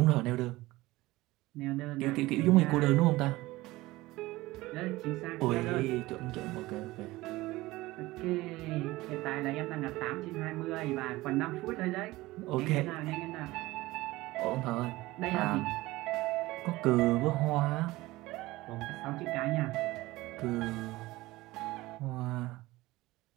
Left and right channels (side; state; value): left; quieter; 19.2 dB